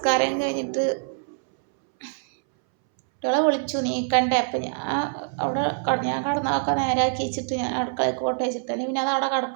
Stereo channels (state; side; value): silent; left; 62 dB below the other